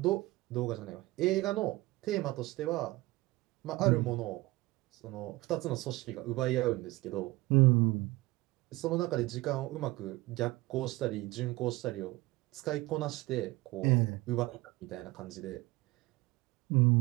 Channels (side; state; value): left; quieter; 20.1 dB